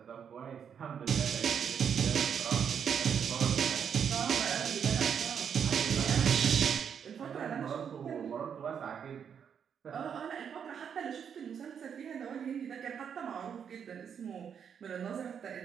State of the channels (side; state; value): left; quieter; 7.6 dB